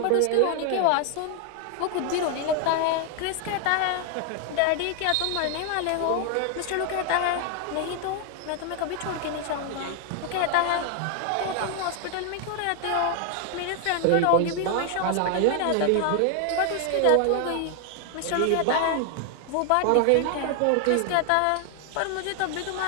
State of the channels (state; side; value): different; both; correlation 0.00